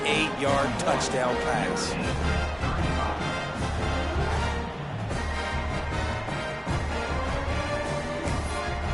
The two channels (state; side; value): identical; both; correlation 1.00